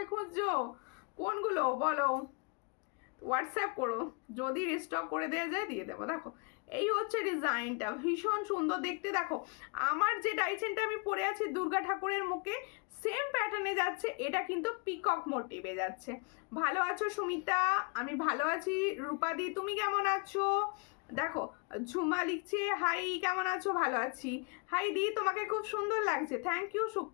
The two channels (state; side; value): quieter; right; 32.7 dB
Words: খুঁজছো, কোনগুলো বলো, হোয়াটসঅ্যাপ করো, যদি রিস্টক করে দেওয়া যায় দিয়ে দেবো। দেখো এই হচ্ছে ডিজাইনটা, ভীষণ সুন্দর দেখতে। দেখো আমার যে ডাইচেনটা আমি পরে আছি দুর্গা ঠাকুরের মুখে, সেম প্যাটার্নে যাচ্ছে, এটা কিন্তু পিকক মোটিভে যাচ্ছে। ভালো আছো সুমিতা? আমি ভালো আছি। রূপাদি তুমি কেমন আছো? দেখো ঝুমা লিখছে হাই, কেমন আছো? ভালো আছি। হাই দি, তোমাকে খুব সুন্দর লাগছে, থ্যাংক ইউ